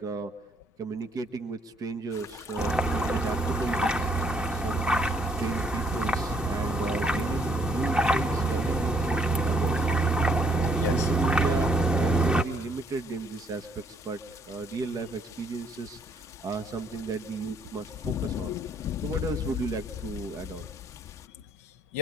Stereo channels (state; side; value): normal; both; correlation 0.68